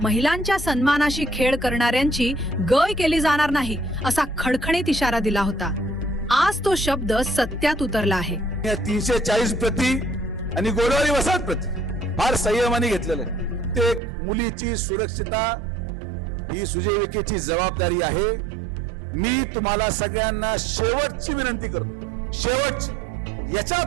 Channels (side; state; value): left; drops out; at 14.0 s